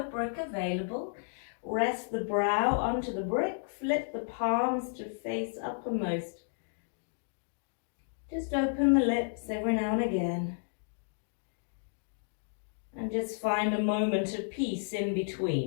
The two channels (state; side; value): silent; right; digital silence